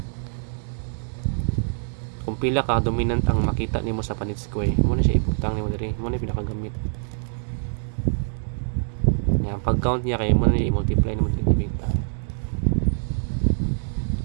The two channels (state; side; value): silent; left; digital silence